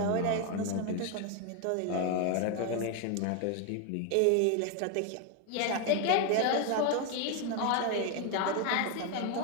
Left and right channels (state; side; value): different; both; correlation 0.01